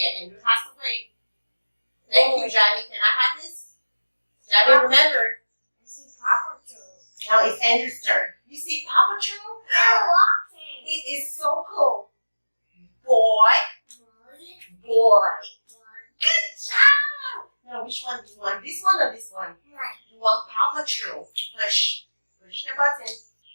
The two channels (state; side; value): inverted; both; correlation -1.00